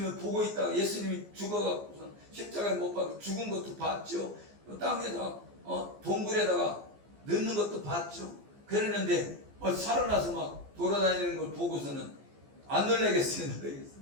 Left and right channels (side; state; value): left; late; 14 ms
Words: 보고 있다가 예수님이 죽어갖고 십자가에 못 박혀 죽은 것도 봤죠. 땅에다가 동굴에다가 넣는 것도 봤죠. 그랬는데 살아나서 막 돌아다니는 걸 보고서는 안 놀라겠어요?